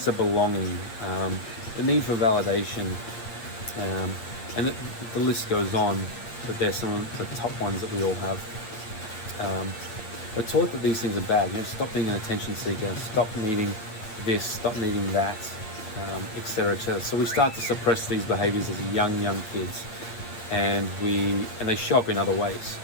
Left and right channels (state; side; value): late; right; 8.7 ms